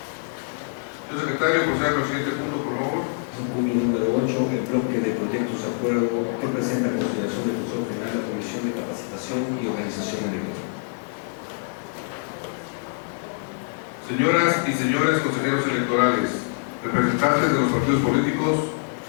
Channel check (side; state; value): right; silent; 62 dB below the other